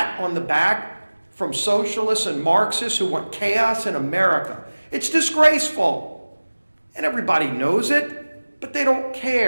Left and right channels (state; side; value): inverted; both; correlation -1.00